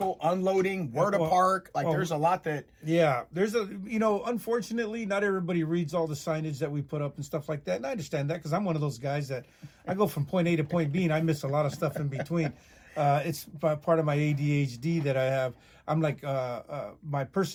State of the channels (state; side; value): identical; both; correlation 1.00